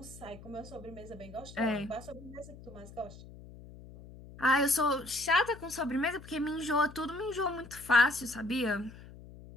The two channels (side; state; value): left; noise; hum, 17 dB below the sound